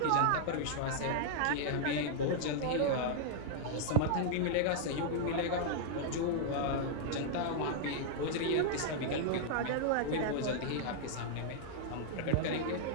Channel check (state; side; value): different; both; correlation -0.01